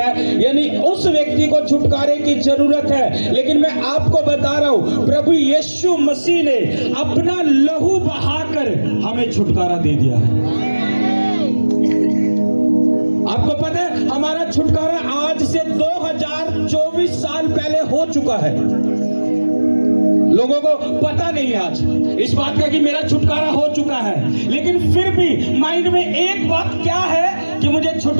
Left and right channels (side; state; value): both; inverted; correlation -1.00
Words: यानी उस व्यक्ति को छुटकारे की जरूरत है। लेकिन मैं आपको बता रहा हूं, प्रभु यीशु मसीह ने अपना लहू बहाकर हमें छुटकारा दे दिया है। आपको पता है हमारा छुटकारा आज से 2024 साल पहले हो चुका है। लोगों को पता नहीं है आज इस बात का कि मेरा छुटकारा हो चुका है, लेकिन फिर भी माइंड में एक बात क्या है कि मुझे